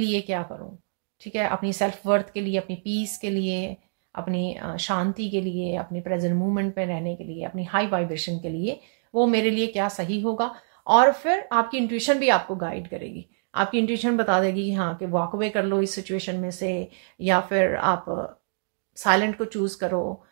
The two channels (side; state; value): left; silent; digital silence